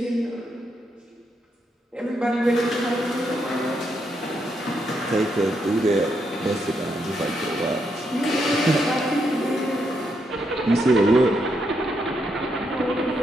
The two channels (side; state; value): both; normal; correlation 0.79